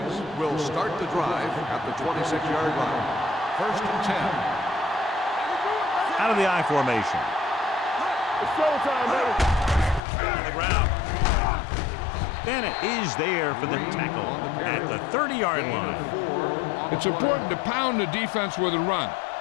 will start the drive at the 26-yard line. First and 10. Out of the I formation. It's showtime, baby. On the ground. Bennett is there for the tackle at the 30-yard line. It's important to pound the defense with a run.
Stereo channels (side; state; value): right; drops out; at 10.0 s